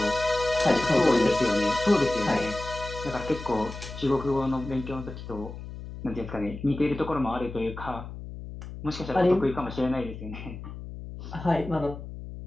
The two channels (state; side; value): noise; left; hum, 11 dB below the sound